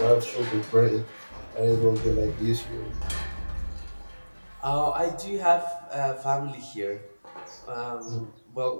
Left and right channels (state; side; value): inverted; both; correlation -1.00